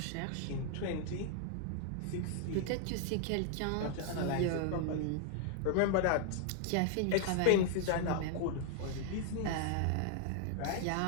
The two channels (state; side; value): different; both; correlation 0.00